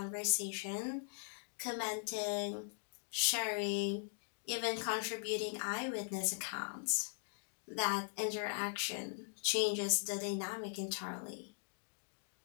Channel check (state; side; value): silent; right; digital silence